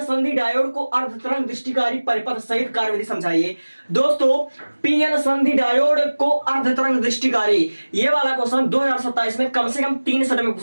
संधि डायोड को अर्धतरंग दृष्टिकारी परिपथ सहित कार्यविधि समझाइए। दोस्तों पीएन संधि डायोड को अर्धतरंग दृष्टिकारी, ये वाला क्वेश्चन 2027 में कम से कम 3 सेट में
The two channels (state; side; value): inverted; both; correlation -1.00